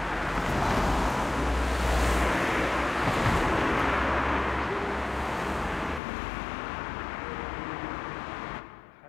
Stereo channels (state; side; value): drops out; right; at 6.0 s